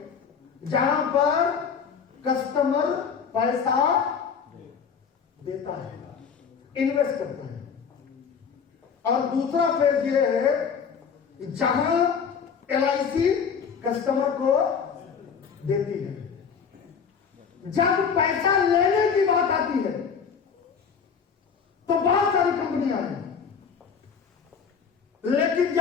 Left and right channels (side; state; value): right; quieter; 6.5 dB